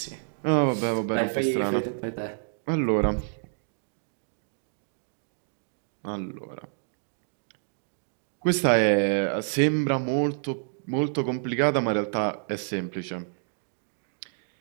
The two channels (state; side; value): silent; left; digital silence